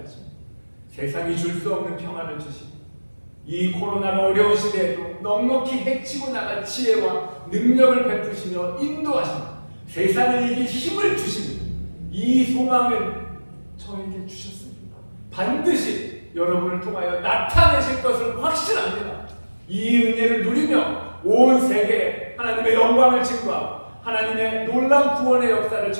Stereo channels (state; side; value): inverted; both; correlation -1.00